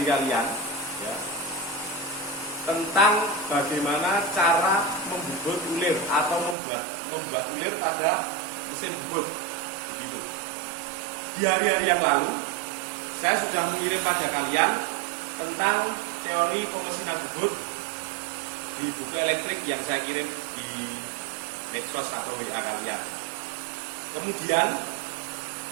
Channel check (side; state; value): left; drops out; at 6.6 s